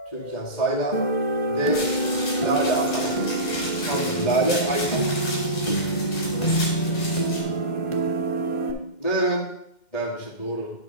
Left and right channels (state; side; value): late; right; 2.1 ms